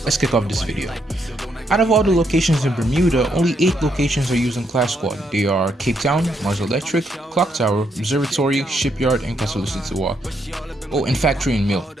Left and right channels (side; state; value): both; normal; correlation 0.76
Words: let's kick off this video. Out of all the locations in Bermuda, only 8 locations are used in Clash Squad. They are Cape Town, Mars Electric, Clock Tower, Observatory, Shipyard, and Castle Sitiwa. Oh, and Factory and Mill,